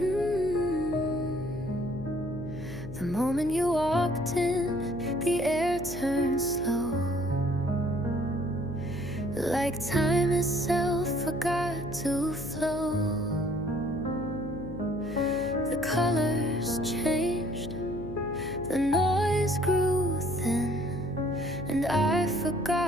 The moment you walked in, the air turned slow, like time itself forgot to flow. The colors changed, the noise grew thin, and I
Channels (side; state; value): left; noise; hum, 10 dB below the sound